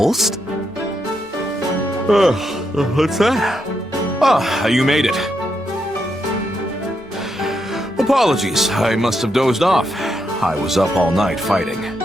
What's that? Ah, you made it. Apologies, I must have dozed off. I was up all night fighting.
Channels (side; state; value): both; normal; correlation 0.81